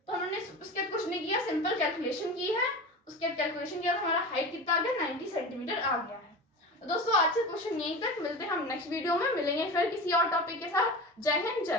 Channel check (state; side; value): normal; both; correlation 0.30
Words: तो हमने उसके बाद कुछ नहीं किया, सिंपल कैलकुलेशन की है, उसके बाद कैलकुलेशन किया तो हमारा हाइट कितना आ गया 90 सेंटीमीटर आ गया है। तो दोस्तों आज से क्वेश्चन यहीं तक, मिलते हैं हम नेक्स्ट वीडियो में, मिलेंगे फिर किसी और टॉपिक के साथ। जय हिंद जय